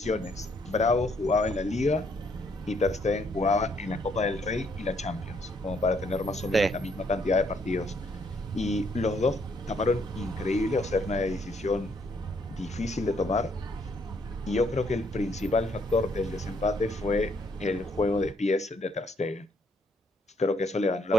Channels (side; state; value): both; normal; correlation 0.70